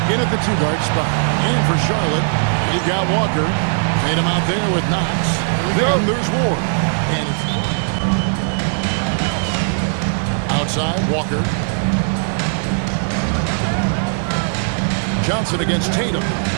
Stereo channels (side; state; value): left; silent; digital silence